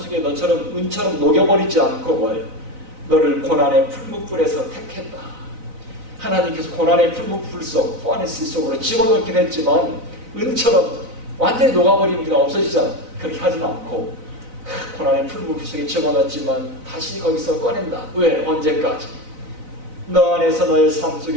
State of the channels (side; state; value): left; late; 4.0 ms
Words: 너처럼 은처럼 녹여버리지 않고 뭐예요? 너를 고난의 풀무불에서 택했다. 하나님께서 고난의 풀무불 속, 포아네스 속으로 집어넣긴 했지만 은처럼 완전히 녹아버리면 그냥 없어지잖아. 그렇게 하진 않고 고난의 풀무불 속에 집어넣었지만 다시 거기서 꺼낸다. 왜? 언제까지? 너 안에서 너의 삶